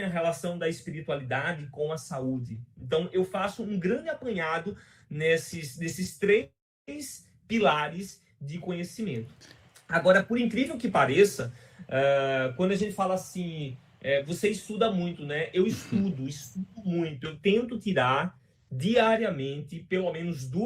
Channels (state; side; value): identical; both; correlation 1.00